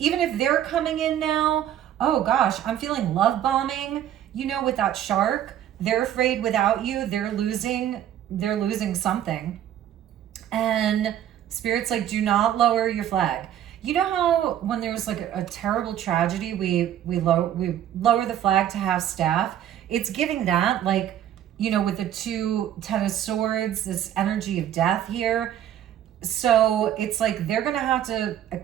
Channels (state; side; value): quieter; left; 11.0 dB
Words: if they're coming in now, oh gosh, I'm feeling love bombing. You know, with that Shark, they're afraid without you, they're losing something. And Spirit's like, do not lower your flag. You know how when there's like a terrible tragedy, we lower the flag to have staff? It's giving that, like, you know, with the 2 Ten of Swords, this energy of death here. So it's like they're going to have to